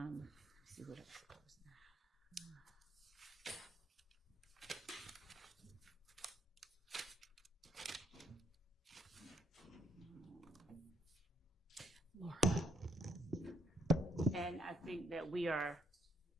see what else. Laura. And I think that we are.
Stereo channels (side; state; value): both; normal; correlation 0.71